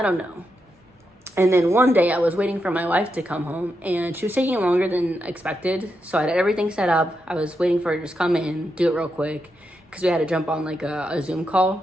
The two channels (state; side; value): normal; both; correlation 0.84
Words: don't know. And then one day I was waiting for my wife to come home, and she was taking longer than expected. So I had everything set up. I was waiting for her to just come in, do it real quick, because we had to jump on like a Zoom